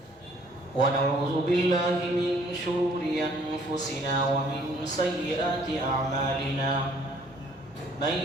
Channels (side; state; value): both; normal; correlation 0.60